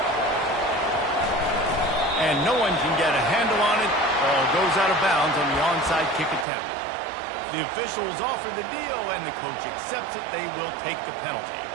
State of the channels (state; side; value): drops out; left; at 6.5 s